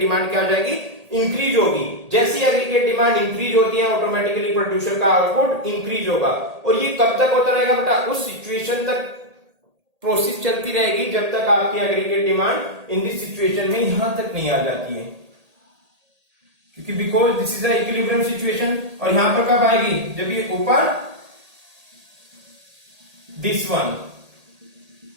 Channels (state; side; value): late; left; 1.8 ms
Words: क्या हो जाएगी, इंक्रीज होगी। जैसी एग्रीगेट डिमांड इंक्रीज होती है, ऑटोमेटिकली प्रोड्यूसर का आउटपुट इंक्रीज होगा। और ये कब तक होता रहेगा बेटा, उस सिचुएशन तक प्रोसेस चलती रहेगी जब तक आपकी aggregate demand in this situation में यहां तक नहीं आ जाती है, क्योंकि because this is a equilibrium situation. और यहां पर कब आएगी, जब ये ऊपर दिस वन